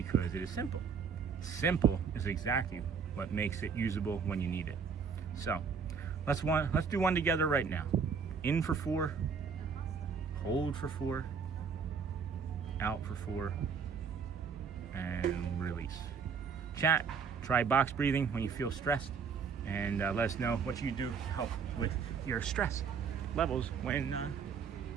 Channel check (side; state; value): left; quieter; 6.1 dB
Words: it is simple. Simple is exactly what makes it usable when you need it. So let's do one together right now. In for 4, hold for 4, out for 4, and release. Chat, try box breathing when you feel stressed, and let us know what you do to help with your stress levels when